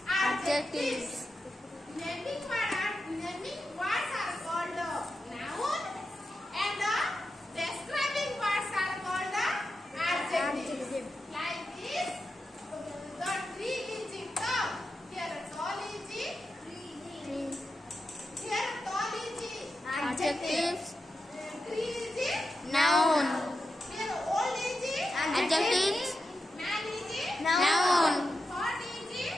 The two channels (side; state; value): both; normal; correlation 0.89